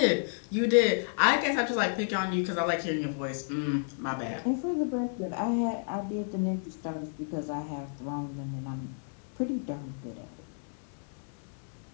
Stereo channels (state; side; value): silent; right; digital silence